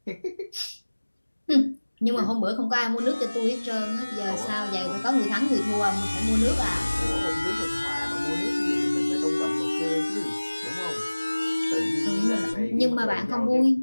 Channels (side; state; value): both; inverted; correlation -1.00